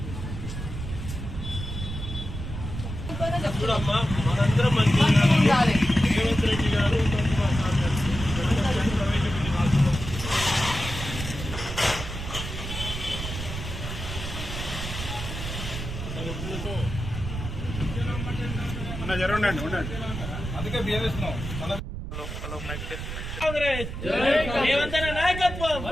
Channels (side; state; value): right; noise; rumble, 7 dB below the sound